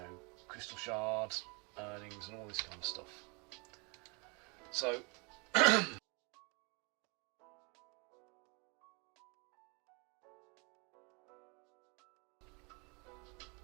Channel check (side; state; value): left; quieter; 31.3 dB